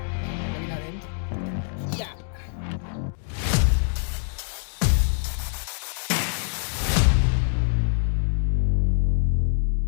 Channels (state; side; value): silent; right; digital silence